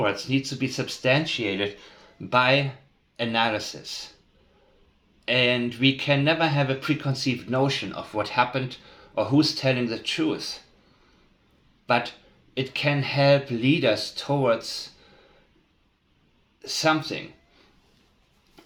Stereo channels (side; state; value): both; identical; correlation 1.00